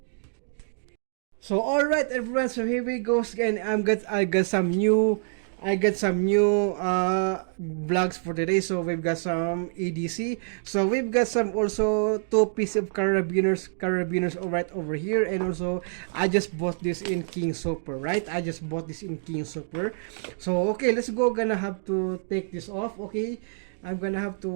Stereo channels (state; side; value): silent; left; digital silence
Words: So alright everyone, so here we go again. I got some new vlogs for today. So we've got some EDC. So we've got some also two pieces of carabiners right over here, and also I just bought this in King Super, right? I just bought this in King Super. So okay, let's go. Gonna have to take this off. Okay, I'm gonna have